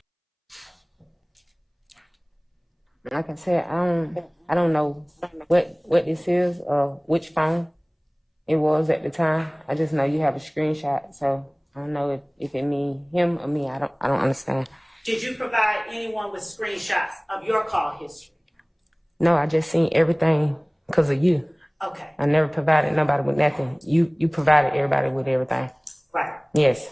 Like I said, I don't know what this is or which phone it was at the time. I just know you have a screenshot, so I don't know if it mean him or me. I don't understand. Did you provide anyone with screenshots of your call history? No, I just seen everything because of you. Okay, I never provided nobody with nothing. You provided everybody with everything. right. Yes.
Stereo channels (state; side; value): identical; both; correlation 1.00